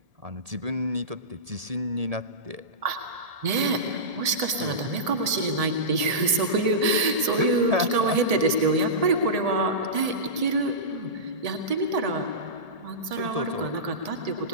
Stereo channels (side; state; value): left; late; 1.7 ms